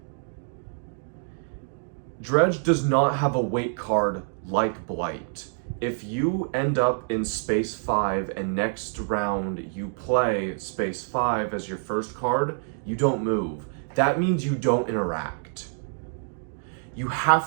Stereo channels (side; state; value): left; silent; 60 dB below the other